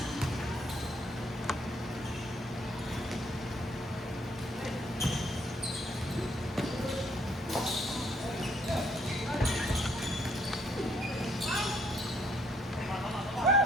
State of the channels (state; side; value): normal; both; correlation 0.69